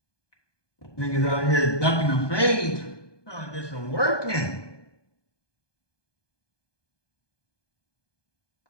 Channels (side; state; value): right; late; 1.2 ms